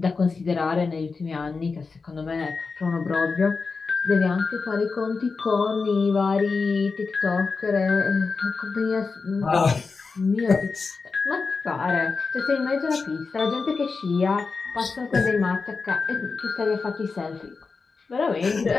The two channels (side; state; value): right; quieter; 4.6 dB